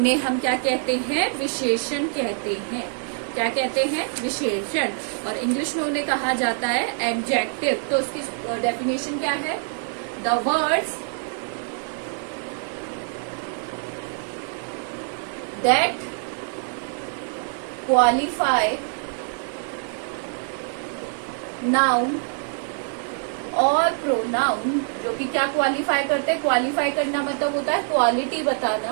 हम क्या कहते हैं? विशेषण कहते हैं। क्या कहते हैं? विशेषण। और इंग्लिश में उन्हें कहा जाता है एडजेक्टिव। तो उसकी डेफिनेशन क्या है? The words that qualify noun और प्रोनाउन, जो कि क्या क्वालिफाई करते हैं? क्वालिफाई करना मतलब होता है क्वालिटी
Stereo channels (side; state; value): left; silent; 58 dB below the other